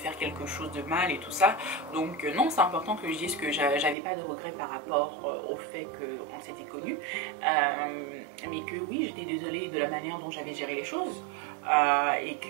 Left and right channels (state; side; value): drops out; left; at 4.0 s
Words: quelque chose de mal et tout ça. Donc non, c'est important que je dise que j'avais pas de regrets par rapport au fait qu'on s'était connus, mais que oui, j'étais désolée de la manière dont j'avais géré les choses, et